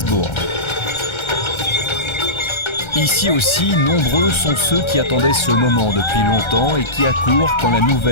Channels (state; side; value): late; right; 1.3 ms